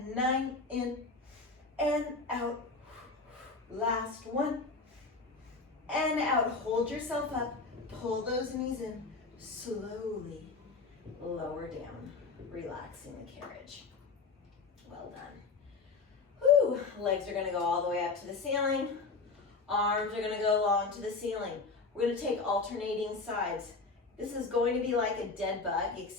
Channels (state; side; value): quieter; right; 4.1 dB